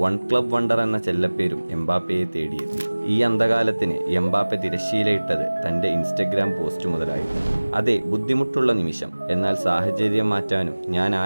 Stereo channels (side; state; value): both; inverted; correlation -1.00